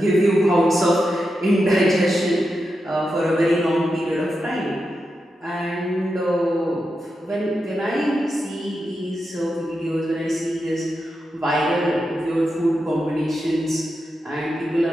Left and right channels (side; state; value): both; normal; correlation 0.88